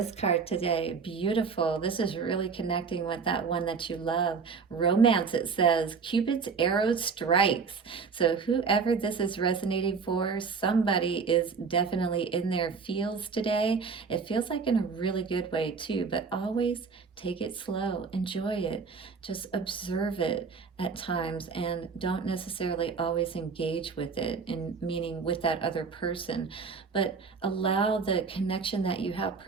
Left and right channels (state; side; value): quieter; left; 5.3 dB